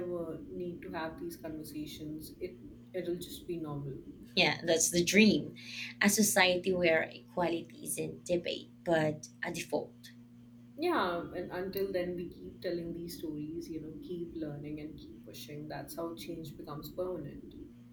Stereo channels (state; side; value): identical; both; correlation 1.00